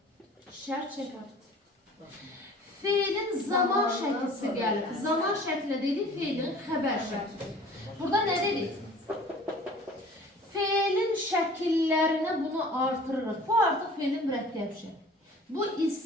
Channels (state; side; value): normal; both; correlation 0.47